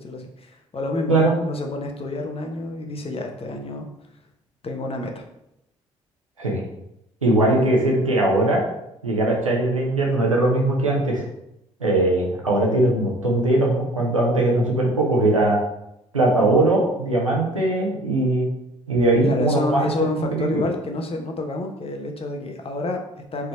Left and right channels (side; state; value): both; normal; correlation 0.47